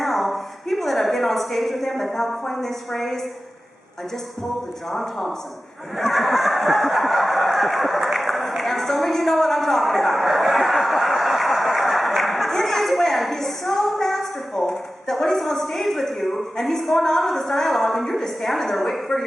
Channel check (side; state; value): both; normal; correlation 0.94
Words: people that have been on stage with him have now coined this phrase, I just pulled the John Thompson. And some of you know what I'm talking about. It is when he's so masterful that when he's on stage with you, and he's going on with his dialogue, and you're just standing there waiting for